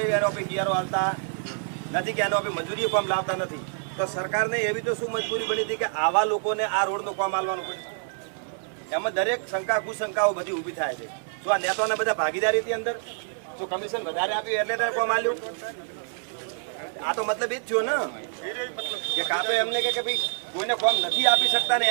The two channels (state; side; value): silent; left; digital silence